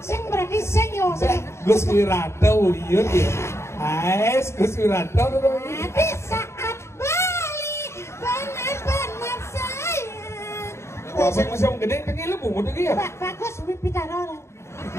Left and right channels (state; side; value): late; right; 0.13 ms